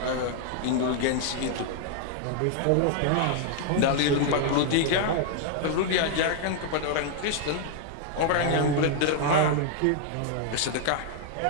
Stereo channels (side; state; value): both; different; correlation 0.00